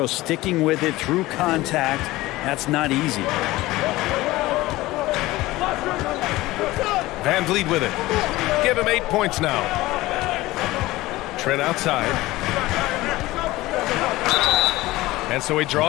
sticking with it through contact. That's not easy. Van Vliet with it. Give him 8 points now. Trent outside. And so he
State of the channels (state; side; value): quieter; right; 18.5 dB